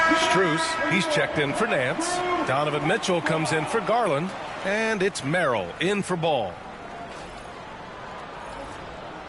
Strus, he's checked in for Nance. Donovan Mitchell comes in for Garland. And it's Merrill in for Ball.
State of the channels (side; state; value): both; identical; correlation 1.00